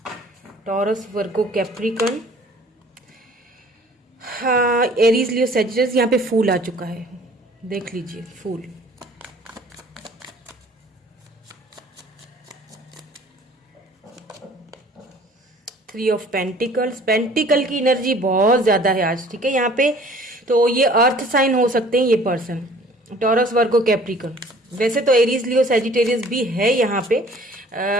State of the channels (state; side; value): normal; both; correlation 0.52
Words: Taurus, Virgo, Capricorn, हाँ, एरीज, लियो, सैजिटस। यहाँ पे फूल आ चुका है, देख लीजिए फूल। थ्री ऑफ पेंटिकल्स, पेंटिकल की एनर्जी बहुत ज्यादा है आज, ठीक है यहाँ पे। तो ये अर्थ साइन हो सकते हैं ये पर्सन, टॉरस, वर्गो, कैप्रिकॉर्न। वैसे तो एरीज, लियो, सैजिटेरियस भी है यहाँ पे,